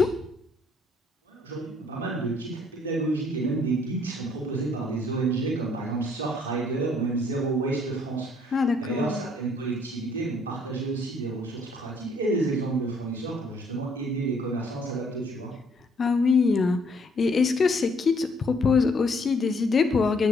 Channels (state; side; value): normal; both; correlation 0.65